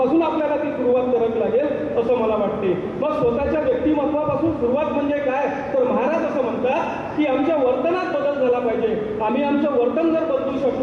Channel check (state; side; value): identical; both; correlation 1.00